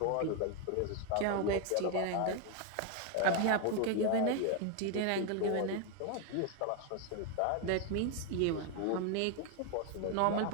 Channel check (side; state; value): both; different; correlation 0.01